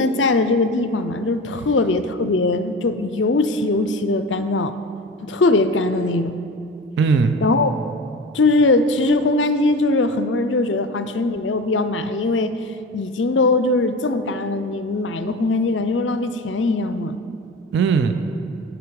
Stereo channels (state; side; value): normal; both; correlation 0.31